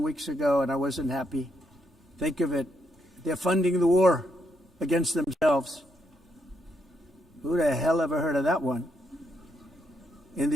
ago, and I wasn't happy. Think of it. They're funding the war against themselves. Who the hell ever heard of that one? In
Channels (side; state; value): both; normal; correlation 0.77